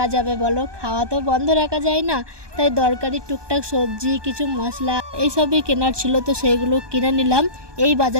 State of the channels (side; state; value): left; late; 1.2 ms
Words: যাবে বলো, খাওয়া তো বন্ধ রাখা যায় না। তাই দরকারি টুকটাক সবজি, কিছু মশলা এইসবই কেনার ছিল, তো সেইগুলো কিনে নিলাম। এই